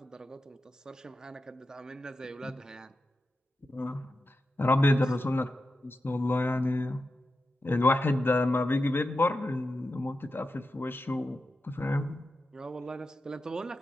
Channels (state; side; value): normal; both; correlation 0.90